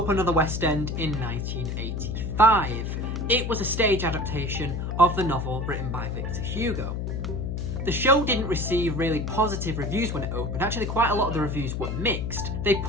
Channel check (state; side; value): noise; left; hum, 3 dB below the sound